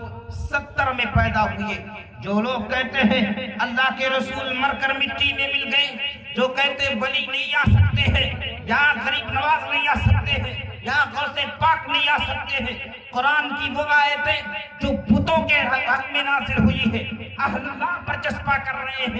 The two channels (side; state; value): both; identical; correlation 1.00